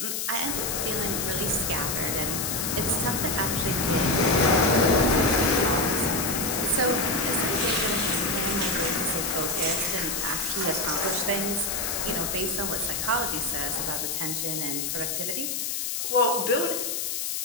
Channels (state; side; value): noise; left; hiss, 1 dB below the sound